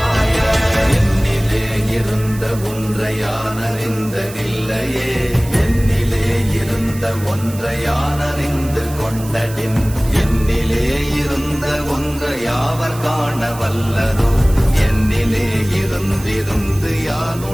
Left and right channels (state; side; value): noise; right; hiss, 16 dB below the sound